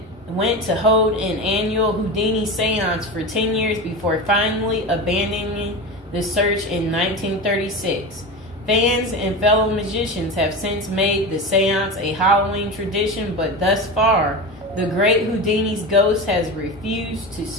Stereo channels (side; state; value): both; normal; correlation 0.25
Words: to hold an annual Houdini seance for 10 years before finally abandoning the search in 1936. Fans and fellow magicians have since made the seance a Halloween tradition, but thus far, the great Houdini's ghost has refused to